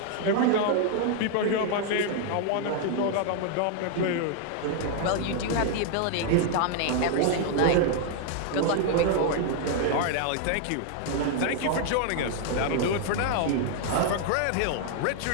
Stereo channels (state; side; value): different; both; correlation 0.00